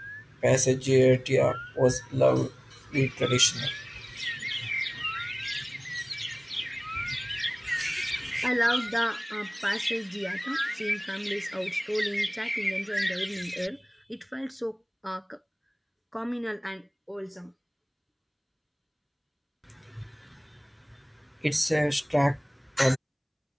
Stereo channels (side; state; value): both; identical; correlation 1.00